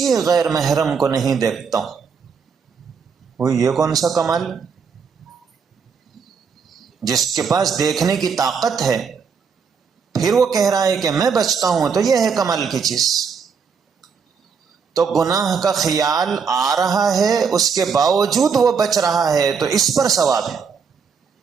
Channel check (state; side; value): quieter; left; 6.0 dB